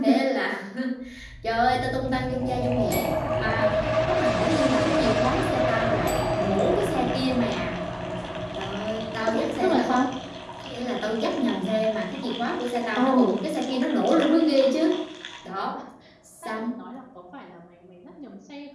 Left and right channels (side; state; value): both; identical; correlation 1.00